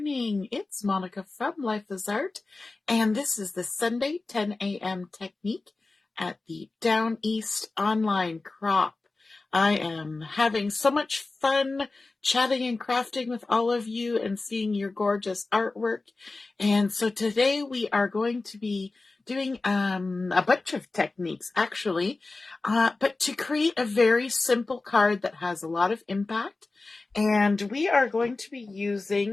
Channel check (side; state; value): right; quieter; 3.5 dB